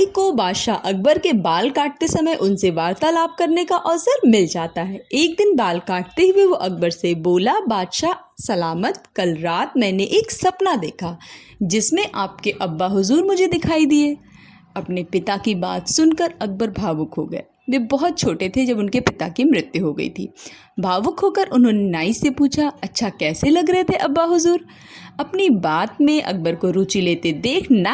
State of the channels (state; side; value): identical; both; correlation 1.00